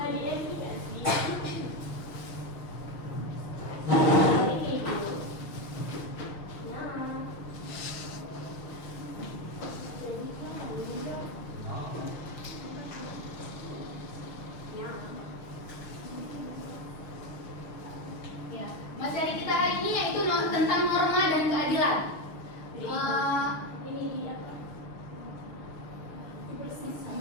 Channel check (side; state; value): right; late; 6.5 ms